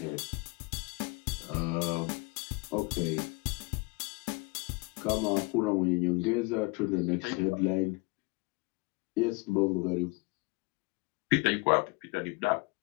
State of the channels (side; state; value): right; quieter; 26.5 dB